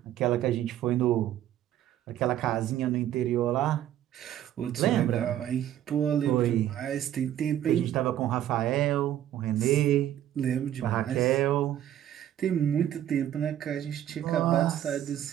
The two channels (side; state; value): left; quieter; 11.7 dB